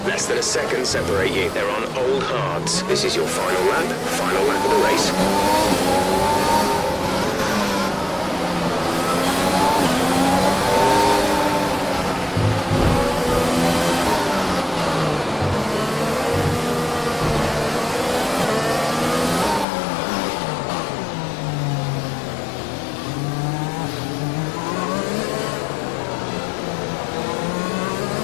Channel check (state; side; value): drops out; right; at 19.7 s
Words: Less than a second separate you. They're on old hards. This is your final lap of the race.